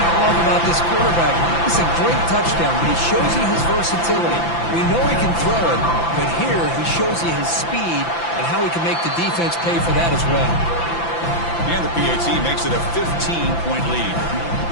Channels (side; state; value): right; late; 5.9 ms